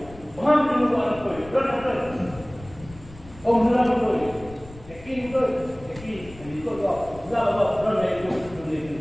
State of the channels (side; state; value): left; noise; rumble, 19 dB below the sound